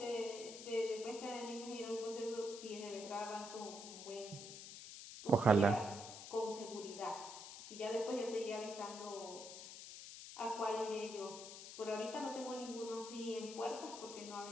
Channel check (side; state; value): left; noise; hiss, 11 dB below the sound